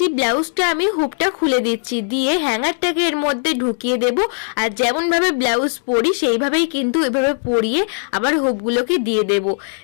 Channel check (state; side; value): silent; right; digital silence